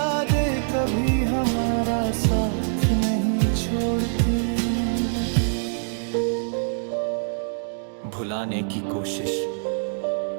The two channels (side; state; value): left; silent; digital silence